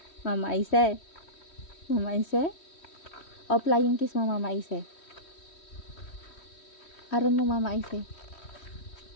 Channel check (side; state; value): right; late; 3.1 ms